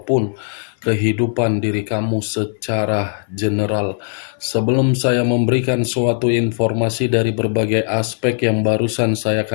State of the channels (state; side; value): silent; right; 60 dB below the other